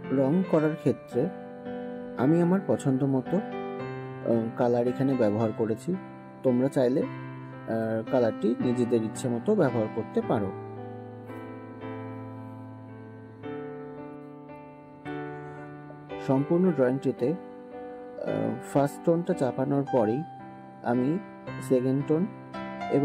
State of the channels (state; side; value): identical; both; correlation 1.00